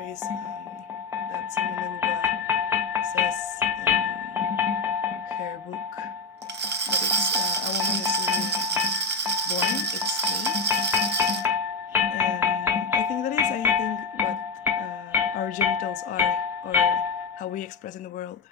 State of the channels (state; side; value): quieter; right; 4.0 dB